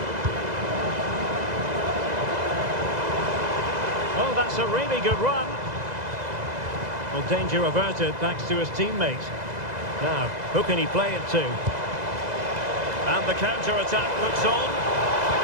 Oh, that's a really good run. Well, danger averted thanks to his teammate. Now, who can he play it to? And the counter-attack looks on.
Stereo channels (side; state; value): left; late; 2.0 ms